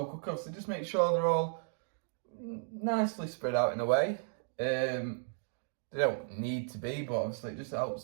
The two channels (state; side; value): silent; left; digital silence